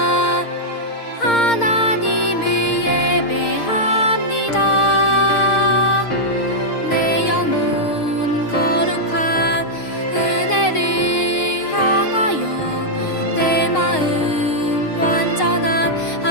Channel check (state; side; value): late; right; 6.5 ms